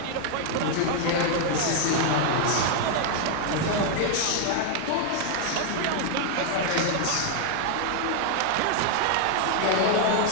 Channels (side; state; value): both; different; correlation 0.00